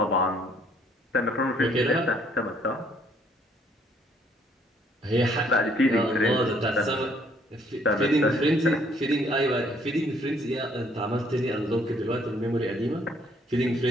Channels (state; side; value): normal; both; correlation 0.64